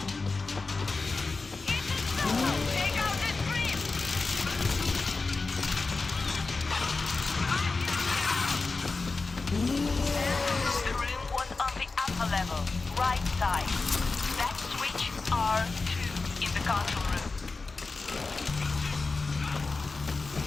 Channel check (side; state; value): right; quieter; 3.9 dB